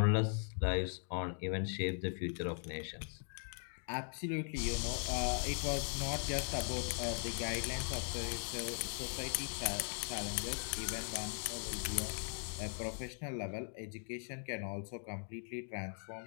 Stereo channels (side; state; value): right; silent; 51 dB below the other